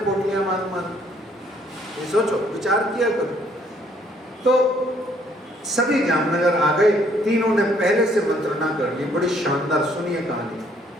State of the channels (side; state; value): both; normal; correlation 0.65